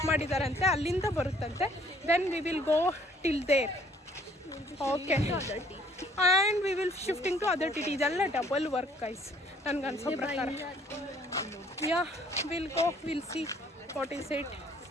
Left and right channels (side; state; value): both; normal; correlation 0.60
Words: ಮಾಡಿದಾರಂತೆ, ಅಲ್ಲಿಂದ ಬರುತ್ತಂತೆ. Then we will go till there. Okay and we will shifting to other T T. ಇದೆಲ್ಲ ಡಬಲ್ ವರ್ಕ್ ಗೈಸ್ ನನಗೆ ಅನ್ಸೋ ಪ್ರಕಾರ. Yeah will go, will see what is it.